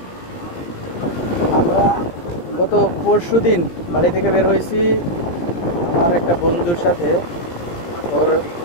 আমরা গত পরশুদিন বাড়ি থেকে বের হয়েছি আমার একটা বন্ধুর সাথে, ওর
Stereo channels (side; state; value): right; late; 17 ms